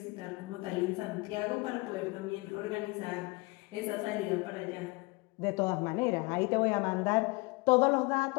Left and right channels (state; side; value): quieter; right; 25.4 dB